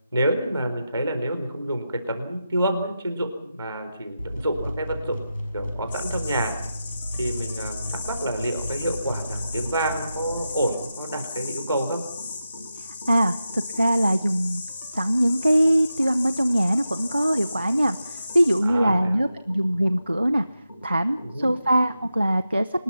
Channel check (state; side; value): inverted; both; correlation -0.90